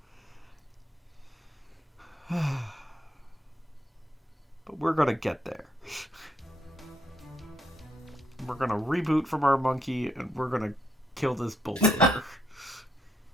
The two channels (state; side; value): normal; both; correlation 0.75